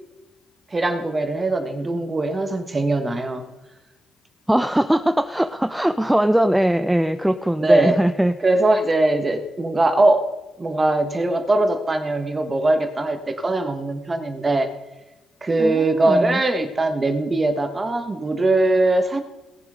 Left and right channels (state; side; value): normal; both; correlation 0.93